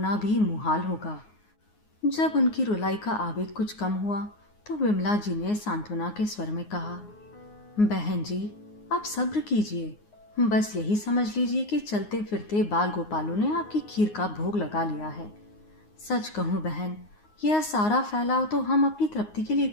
भी मुहाल होगा। जब उनकी रुलाई का आवेग कुछ कम हुआ तो विमला जी ने सांत्वना के स्वर में कहा, बहन जी आप सब्र कीजिए, बस यही समझ लीजिए कि चलते फिरते बाल गोपालों ने आपकी खीर का भोग लगा लिया है। सच कहूँ बहन, यह सारा फैलाव तो हम अपनी तृप्ति के लिए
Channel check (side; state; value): right; late; 9.6 ms